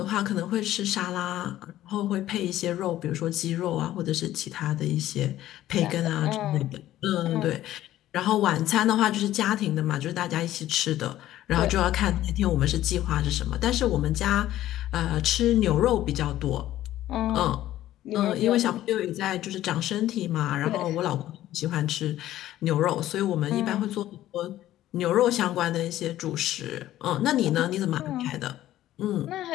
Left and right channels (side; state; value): right; quieter; 13.8 dB